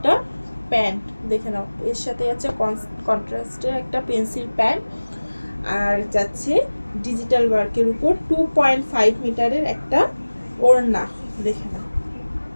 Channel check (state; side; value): inverted; both; correlation -1.00